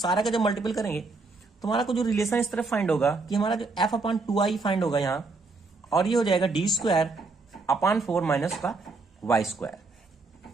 का जब मल्टीपल करेंगे तो हमारा को जो रिलेशन इस तरफ फाइंड होगा कि हमारा जो F/2i फाइंड होगा यहां, और ये हो जाएगा D²/4 माइनस का y²।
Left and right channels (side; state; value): left; quieter; 3.8 dB